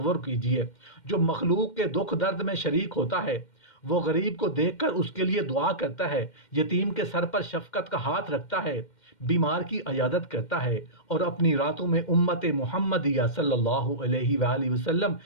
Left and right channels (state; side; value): late; right; 2.1 ms